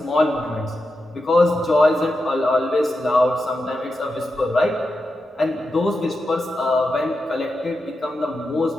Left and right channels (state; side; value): normal; both; correlation 0.88